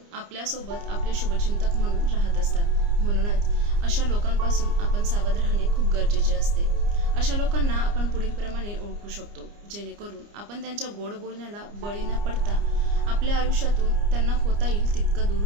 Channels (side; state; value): left; late; 29 ms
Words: आपल्यासोबत आपले शुभचिंतक म्हणून राहत असतात. म्हणूनच अशा लोकांपासून आपण सावध राहणे खूप गरजेचे असते. अशा लोकांना आपण पुढीलप्रमाणे ओळखू शकतो, जेणेकरून आपण त्यांच्या गोड बोलण्याला बळी न पडता आपल्या आयुष्यातून त्यांना होता येईल तितकं दूर